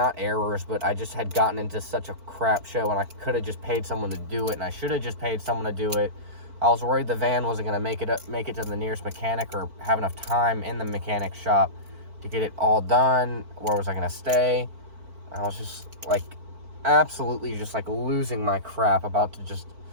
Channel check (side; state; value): left; late; 4.5 ms